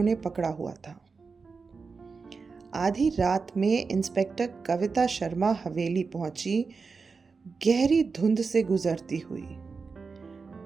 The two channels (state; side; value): quieter; left; 4.7 dB